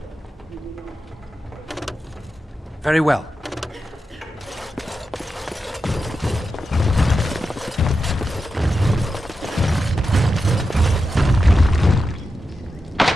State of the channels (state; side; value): normal; both; correlation 0.89